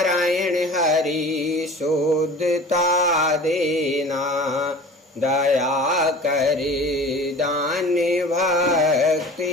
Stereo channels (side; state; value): both; normal; correlation 0.40